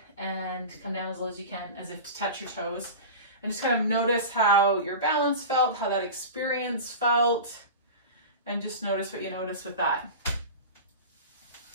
and come down as low as you can, as if to touch your toes. And just kind of notice how your balance felt, how that experience felt, and just notice what you notice with that.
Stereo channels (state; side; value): inverted; both; correlation -0.30